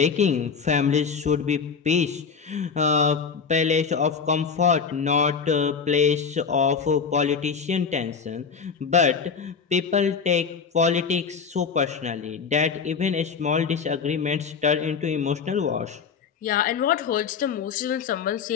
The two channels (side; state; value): right; quieter; 5.9 dB